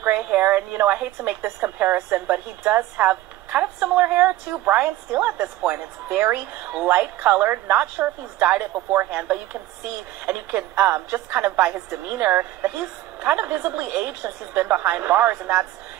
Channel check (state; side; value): quieter; left; 15.5 dB